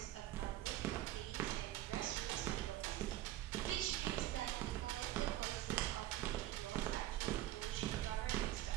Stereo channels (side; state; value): left; quieter; 14.1 dB